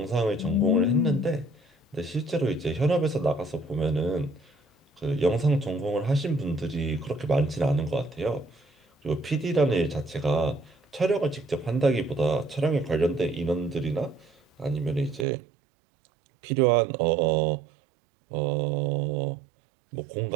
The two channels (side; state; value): left; drops out; at 15.2 s